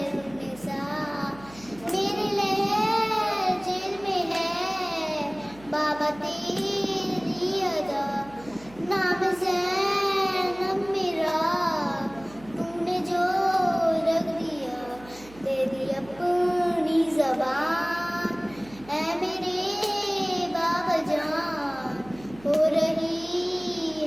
मेरे लहर जेल में है बाबा तेरी अदा नाम ज़ैनब मेरा तूने जो रख दिया तेरी अपनी ज़बान ऐ मेरे बाबा जान हो रही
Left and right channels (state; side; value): noise; right; hum, 21 dB below the sound